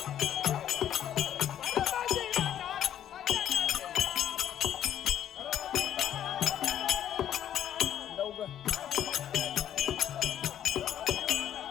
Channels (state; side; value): quieter; right; 10.6 dB